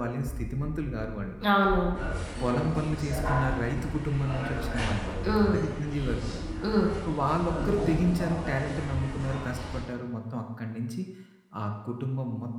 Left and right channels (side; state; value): both; identical; correlation 1.00